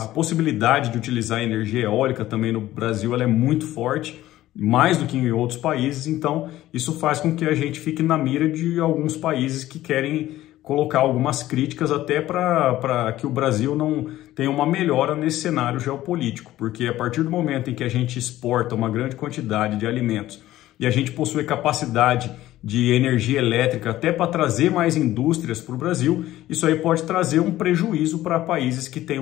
A possibilidade de utilizar energia eólica também no Brasil ela é muito forte, mais do que em outros países, então isso faz com que a gente fique na mira de alguns países que querem colocar algumas críticas até para que o Brasil não tenha uma melhora nesse cenário geopolítico, porque a partir do momento em que a gente exporta uma grande quantidade de alimentos e a gente possui capacidade de energia elétrica até para trazer mais indústrias para o Brasil, isso aí pode trazer um prejuízo para países que têm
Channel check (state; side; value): quieter; right; 14.9 dB